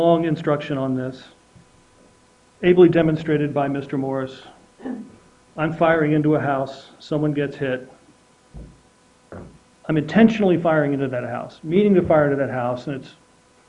instruction on this, ably demonstrated by Mr. Morris. I'm firing into a house, someone gets hit. I'm intentionally firing into that house, meaning to fire into that house, and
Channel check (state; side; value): identical; both; correlation 1.00